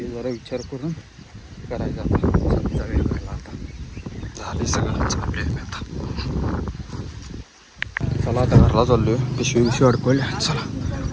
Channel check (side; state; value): both; identical; correlation 1.00